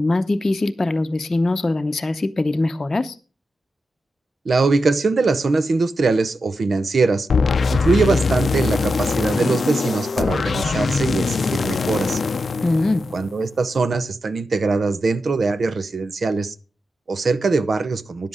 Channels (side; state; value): both; normal; correlation 0.89